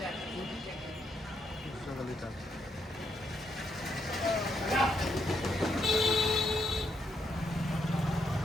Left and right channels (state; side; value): normal; both; correlation 0.79